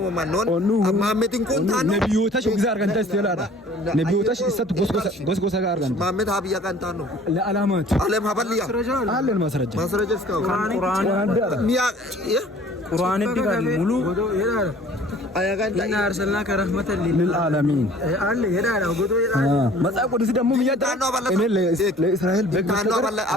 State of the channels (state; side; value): normal; both; correlation 0.50